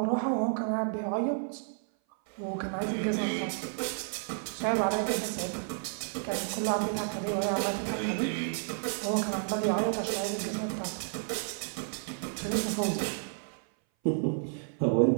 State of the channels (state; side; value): silent; left; 57 dB below the other